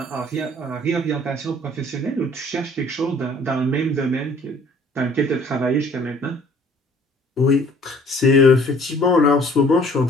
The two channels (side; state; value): both; normal; correlation 0.55